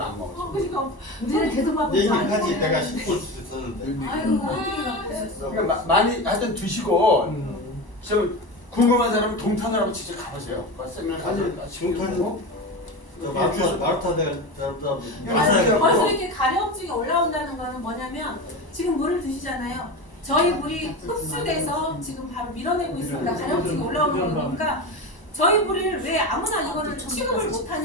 안 먹었어. 우리는 계속 막 얘기하지 내가 씹고 있었는데. 아유 어떻게 갖고 오셨어? 그러니까 많이 하여튼 드시고 좀 궁금한 사람은 동탄을 한번 직접 가보세요. 세미나 동탄 마르타 내가 잘했다. 벌써 이렇게 가려움증이 올라온다는 거는 뭐냐면 지금 물을 드시잖아요. 저희 물이 흡수돼서 지금 바로 밀어내고 있습니다. 가려움증이 올라오는 거니까 저희 물을 왜 아무나 이거를 취급을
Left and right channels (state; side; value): late; right; 1.0 ms